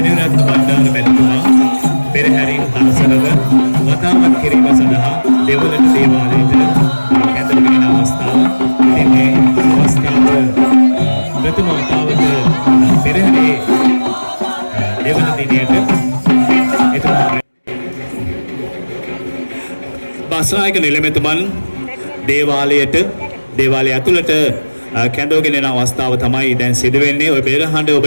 බණ්ඩාර මැතිතුමා පෙරහැරින් හරසරව වතාවත් කිරීම සඳහා දෙවලට දේවාලයට කැඳවගෙන අවස්ථාව. ඉතින් මේ අවස්ථාව ප්‍රථම වතාවට පෙරහැරේ දෙවන දිනයට බස්නායක නිලමේතුමන් දේවාලය ඇතුළට කැඳවගෙන යන අවස්ථාව තමයි දැන් සිදු වෙන්නේ. ඔය පෙරහඬ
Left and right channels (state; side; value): inverted; both; correlation -1.00